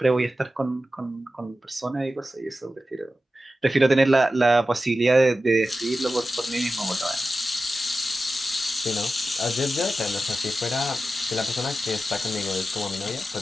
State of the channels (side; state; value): both; normal; correlation 0.93